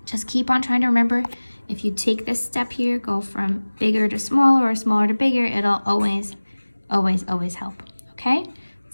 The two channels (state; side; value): inverted; both; correlation -1.00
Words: just keep on trying to remember, if you take this step here, go from bigger to smaller or smaller to bigger, it'll always, always, always help. Okay?